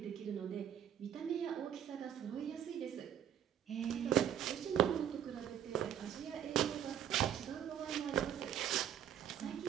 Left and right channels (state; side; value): quieter; left; 9.7 dB